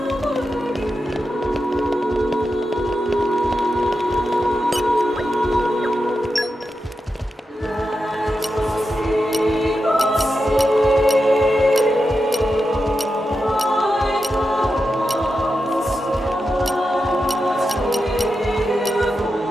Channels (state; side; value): normal; both; correlation 0.89